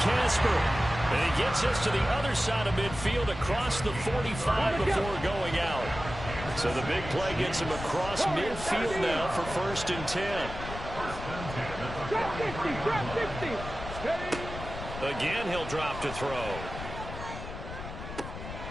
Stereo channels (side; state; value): left; noise; rumble, 10 dB below the sound